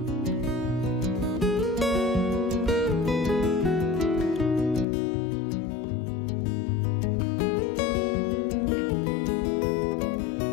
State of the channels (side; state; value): right; drops out; at 4.9 s